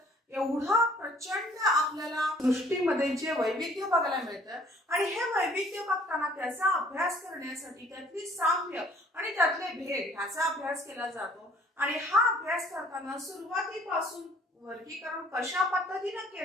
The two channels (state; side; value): normal; both; correlation 0.56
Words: एवढा प्रचंड आपल्याला सृष्टीमध्ये जे वैविध्य बघायला मिळतं आणि हे वैविध्य बघताना त्याचा अभ्यास करण्यासाठी त्यातली साम्य आणि त्यातले भेद ह्याचा अभ्यास केला जातो। आणि हा अभ्यास करताना सुरुवातीपासून वर्गीकरण कशा पद्धतीने